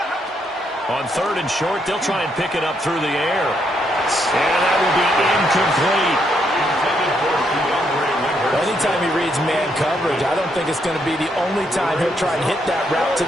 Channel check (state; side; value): normal; both; correlation 0.76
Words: On 3rd and short, they'll try and pick it up through the air. And that will be incomplete. Anytime he reads man coverage, I don't think it's going to be the only time he'll try and hit that route to